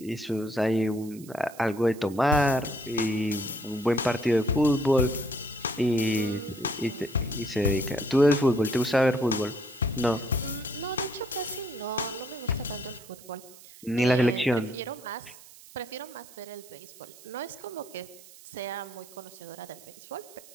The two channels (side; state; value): right; noise; hiss, 20 dB below the sound